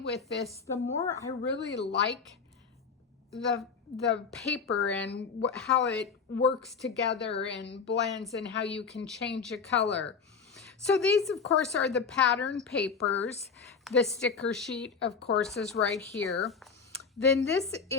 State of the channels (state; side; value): quieter; right; 5.6 dB